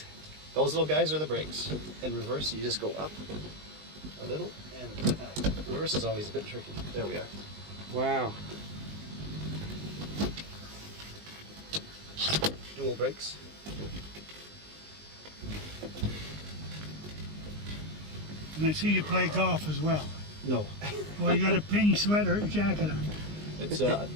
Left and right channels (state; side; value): late; left; 20 ms